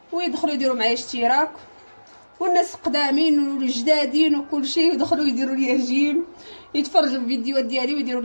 ويدخلوا يديروا معايا اشتراك، والناس قدامين والجدادين وكل شيء يدخلوا يديروا لي جيم، يتفرجوا الفيديوهات ديالي ويديروا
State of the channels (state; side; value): inverted; both; correlation -1.00